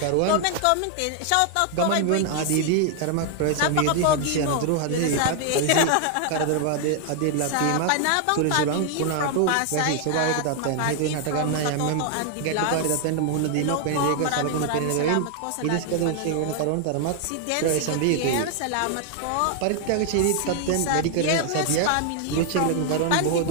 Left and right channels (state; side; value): different; both; correlation 0.00